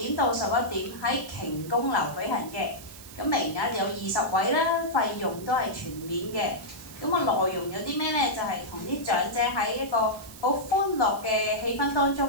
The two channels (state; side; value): noise; right; hiss, 17 dB below the sound